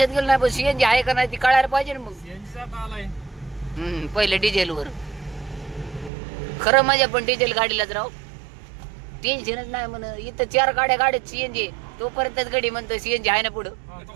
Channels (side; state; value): left; drops out; at 6.1 s